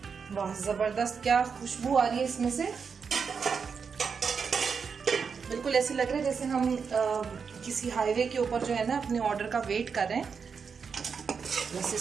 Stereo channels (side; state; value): left; quieter; 5.9 dB